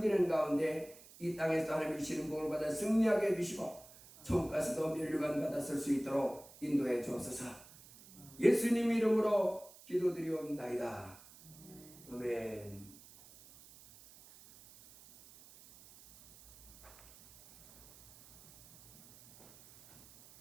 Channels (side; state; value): right; noise; hiss, 21 dB below the sound